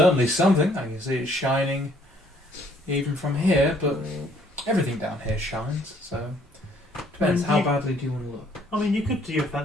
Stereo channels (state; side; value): normal; both; correlation 0.62